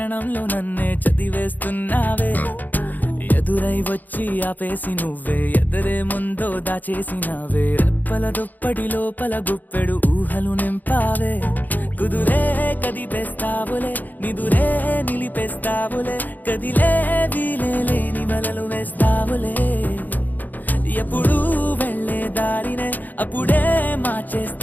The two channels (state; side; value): late; right; 0.084 ms